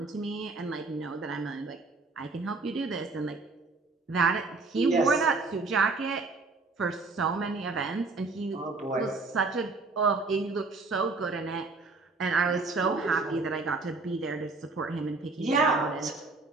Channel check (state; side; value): quieter; left; 3.8 dB